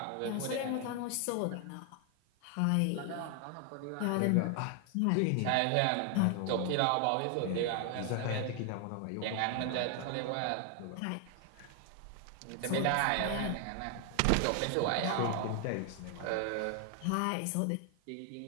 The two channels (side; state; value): both; different; correlation 0.00